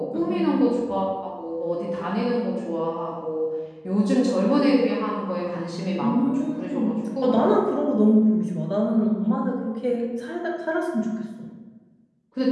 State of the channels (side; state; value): both; identical; correlation 1.00